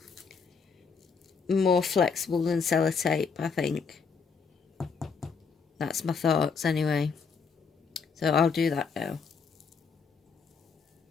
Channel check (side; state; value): right; quieter; 5.5 dB